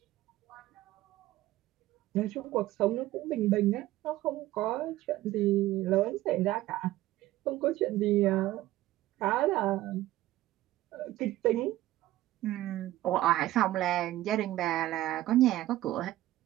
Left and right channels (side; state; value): left; quieter; 15.6 dB